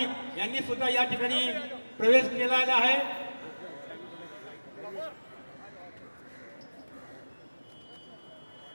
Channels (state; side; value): inverted; both; correlation -1.00